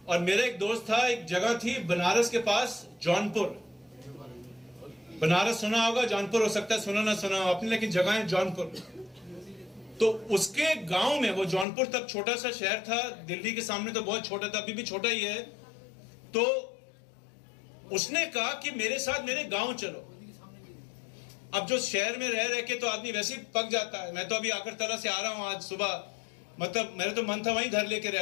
और मेरा एक दोस्त था, एक जगह थी बनारस के पास जौनपुर। बनारस सुना होगा, जौनपुर हो सकता है सुना ना सुना हो आपने, लेकिन जगह है जौनपुर। तो उसके गांव में, वो जौनपुर तक छोटा सा शहर था, दिल्ली के सामने तो बहुत छोटा था, अभी भी छोटा ही है। तो उसने कहा कि मेरे साथ मेरे गांव चलो। अब जो शहर में रह के तो आदमी वैसे ही पक जाता है। मैं तो अभी अगरतला से आ रहा हूं आज सुबह, मतलब मेरा तो मन था वहीं घर लेके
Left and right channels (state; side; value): drops out; right; at 11.7 s